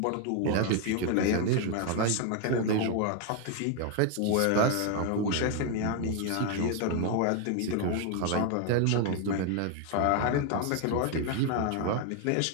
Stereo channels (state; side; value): different; both; correlation 0.01